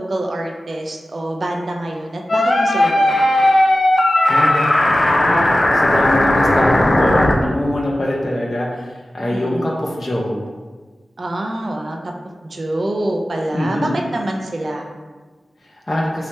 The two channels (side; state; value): both; normal; correlation 0.94